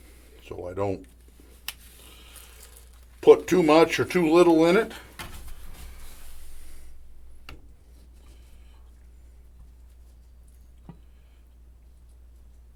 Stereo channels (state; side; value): identical; both; correlation 1.00